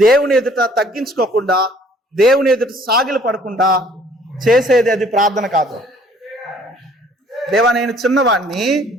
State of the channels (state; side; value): normal; both; correlation 0.57